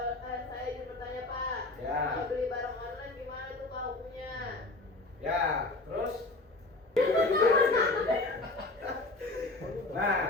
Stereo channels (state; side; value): quieter; right; 3.0 dB